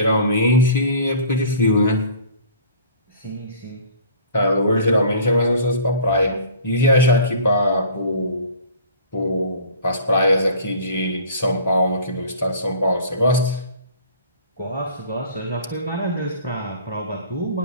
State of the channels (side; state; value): both; inverted; correlation -0.46